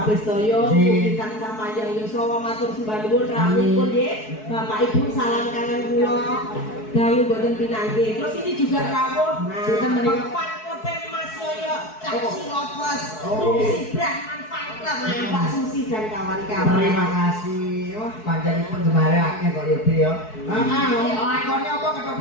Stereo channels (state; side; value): late; right; 4.6 ms